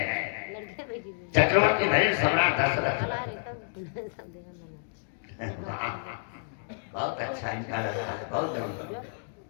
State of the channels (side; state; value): right; silent; digital silence